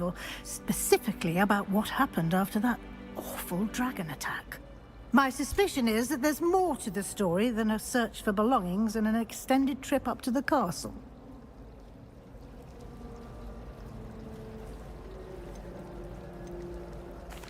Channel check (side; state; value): both; identical; correlation 1.00